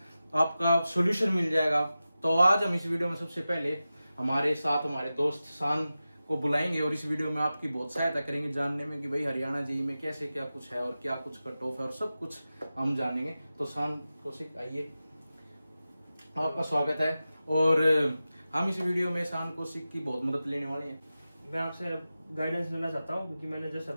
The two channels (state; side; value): inverted; both; correlation -0.94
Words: आपका सोल्यूशन मिल जाएगा। तो आज हम इस वीडियो में सबसे पहले हमारे साथ हमारे दोस्त शान को बुलाएंगे और इस वीडियो में आपकी बहुत सहायता करेंगे जानने में कि भाई हरियाणा जेईई में कैसे क्या कुछ है और क्या कुछ कट ऑफ है, और सब कुछ हम जानेंगे। तो शान कौशिक, आइए, आपका स्वागत है। और हम इस वीडियो में शान कौशिक की बहुत मदद लेने वाले हैं। मैं आपसे गाइडेंस लेना चाहता हूं क्योंकि मैंने जस्ट